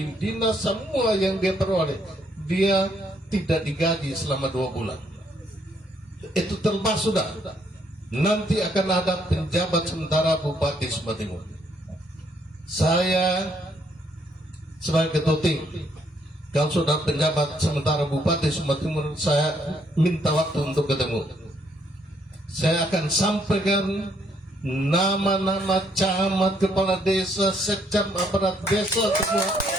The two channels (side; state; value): both; normal; correlation 0.71